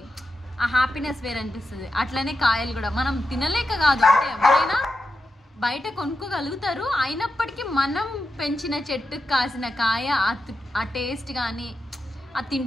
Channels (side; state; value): both; normal; correlation 0.88